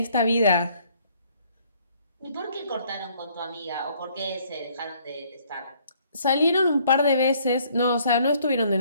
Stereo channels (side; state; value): both; inverted; correlation -0.63